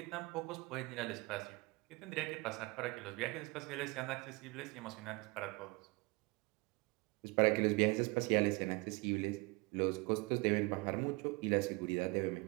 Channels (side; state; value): left; quieter; 26.0 dB